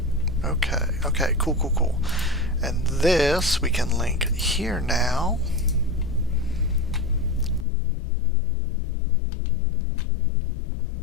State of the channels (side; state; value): right; drops out; at 7.7 s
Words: Okay, cool. And this we can link here now.